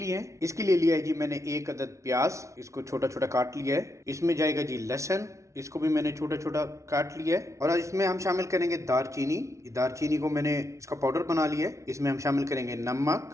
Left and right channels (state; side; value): late; left; 0.14 ms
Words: हैं। इसके लिए लिया है जी मैंने 1 अदद प्याज, इसको छोटा छोटा काट लिया है। इसमें जाएगा जी लहसुन, इसको भी मैंने छोटा छोटा काट लिया है। और इसमें हम शामिल करेंगे दारचीनी। दारचीनी को मैंने इसका पाउडर बना लिया है। इसमें हम शामिल करेंगे